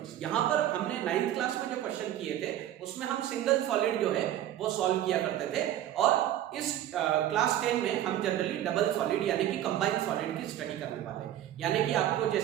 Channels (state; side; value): quieter; left; 12.2 dB